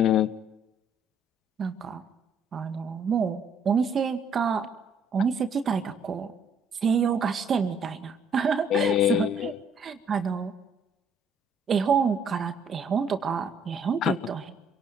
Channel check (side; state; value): both; normal; correlation 0.64